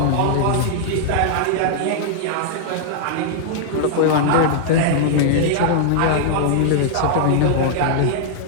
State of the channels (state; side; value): different; both; correlation -0.01